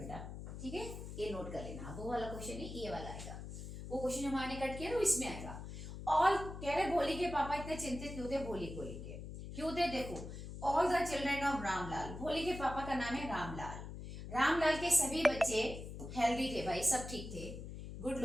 ठीक है, ये नोट कर लेना, वो वाला क्वेश्चन है, ये वाला आएगा, वो क्वेश्चन जो मैंने कट किया ना इसमें आएगा। और कह रहे भोली के पापा इतने चिंतित क्यों थे भोली को लेके, क्यों थे, देखो all the children of Ramlal, भोली के पापा का नाम है रामलाल, रामलाल के सभी बच्चे हेल्दी थे भाई, सब ठीक थे, गुड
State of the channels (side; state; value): left; noise; hum, 9 dB below the sound